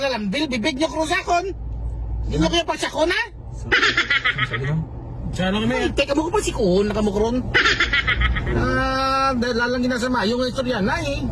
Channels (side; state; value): both; identical; correlation 1.00